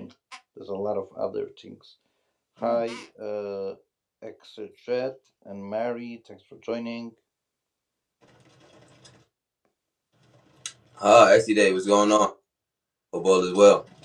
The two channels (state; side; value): identical; both; correlation 1.00